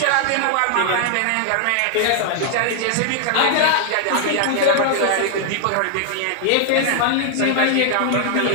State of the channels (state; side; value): different; both; correlation 0.00